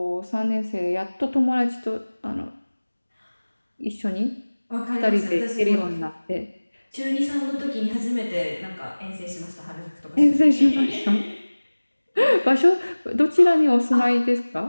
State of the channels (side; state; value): both; inverted; correlation -1.00